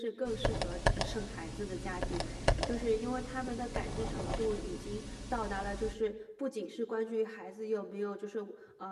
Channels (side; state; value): both; identical; correlation 1.00